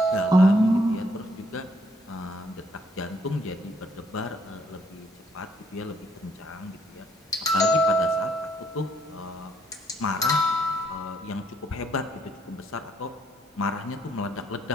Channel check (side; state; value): both; normal; correlation 0.70